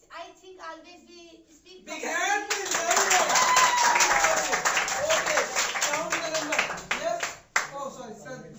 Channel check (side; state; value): both; identical; correlation 1.00